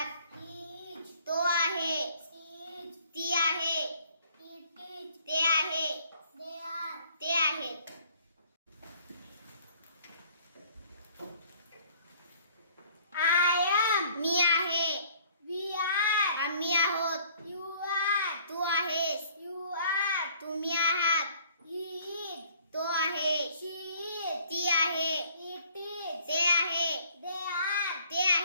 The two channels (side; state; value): both; inverted; correlation -0.57